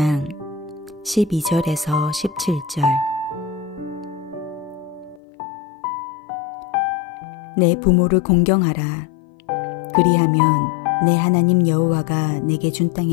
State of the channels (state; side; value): drops out; right; at 5.2 s